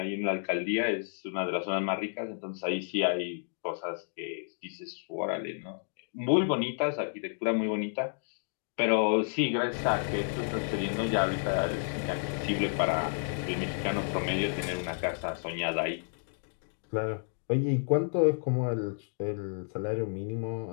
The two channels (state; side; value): silent; right; digital silence